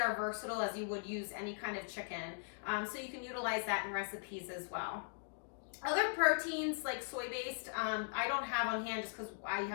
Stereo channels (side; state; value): right; silent; digital silence